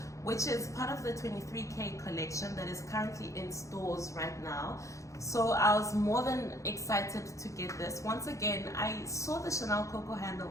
which is part of the 23K collection that is currently in stores right now. So I was more than excited to get this. Once again, I saw the Chanel Coco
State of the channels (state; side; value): late; right; 0.15 ms